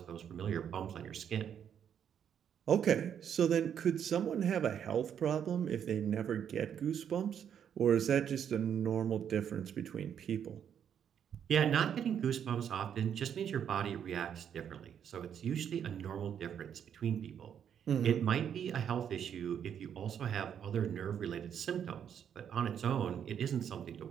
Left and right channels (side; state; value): left; quieter; 8.6 dB